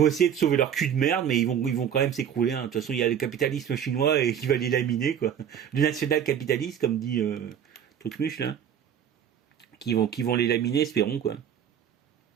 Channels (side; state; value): left; quieter; 8.8 dB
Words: essayer de sauver leur cul de merde, mais ils vont quand même s'écrouler. Hein. De toute façon, il y a le capitalisme chinois et qui va les laminer, quoi. Le national-capitaliste, comme dit Trucmuche, là, qui vont les laminer, espérons, quoi. Donc